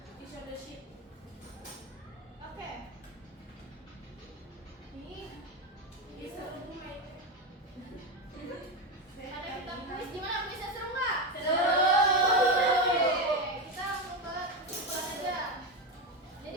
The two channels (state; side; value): normal; both; correlation 0.14